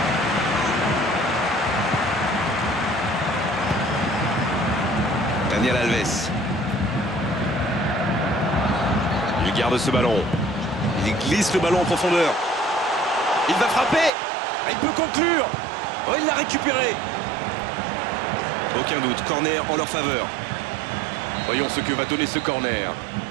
Daniel Alves. Il garde ce ballon. Il glisse le ballon en profondeur. Il va frapper. Il peut conclure. Oh, il l'a récupéré. Aucun doute, corner en leur faveur. Voyons ce que va donner ce corner.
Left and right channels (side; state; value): left; drops out; at 14.1 s